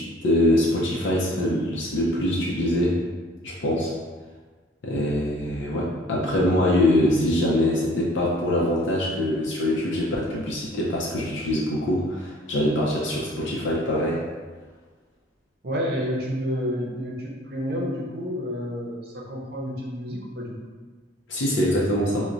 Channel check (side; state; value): both; normal; correlation 0.52